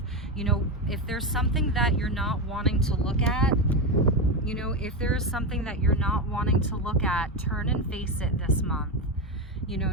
You know, if there's something that you're not wanting to look at, you know, if there is something that you're not wanting to look at, turn and face it this month. You know,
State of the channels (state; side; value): normal; both; correlation 0.13